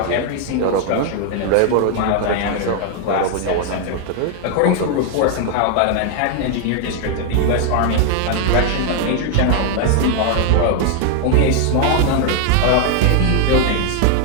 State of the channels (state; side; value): different; both; correlation 0.00